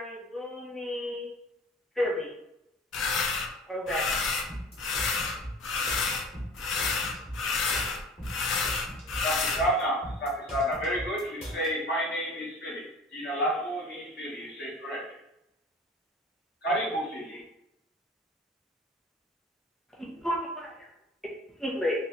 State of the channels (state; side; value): normal; both; correlation 0.42